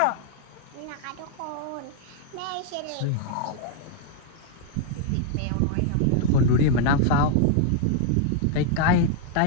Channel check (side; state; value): both; different; correlation 0.00